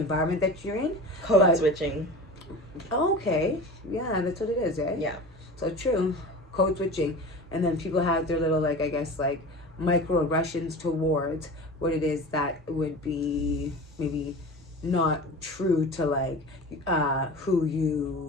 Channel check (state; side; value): normal; both; correlation 0.34